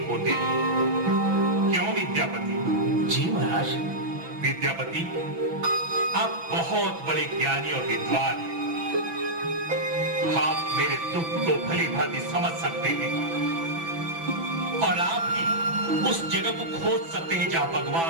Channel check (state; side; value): late; left; 6.0 ms